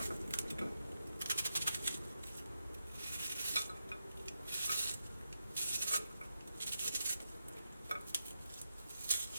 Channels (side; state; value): both; inverted; correlation -0.87